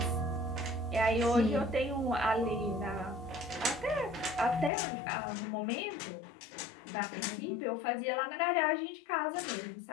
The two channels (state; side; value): drops out; right; at 4.7 s